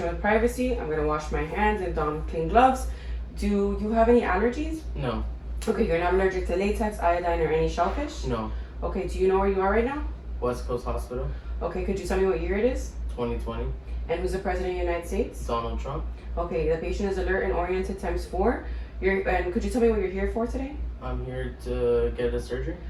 with privacy. I'm going to wash my hands and don clean gloves. Do you have any allergies? No. Okay, you're not allergic to latex, iodine, or any shellfish? No. Okay, do you know where you are right now? West Coast Hospital. Okay, could you tell me what year it is? 2020. And who's the President of the United States? Donald Trump. Okay, the patient is alert and oriented ×4. And could you tell me what you're here for today? I'm here to get a surgery.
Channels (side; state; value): both; identical; correlation 1.00